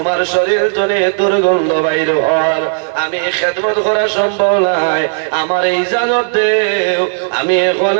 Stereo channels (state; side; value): silent; left; digital silence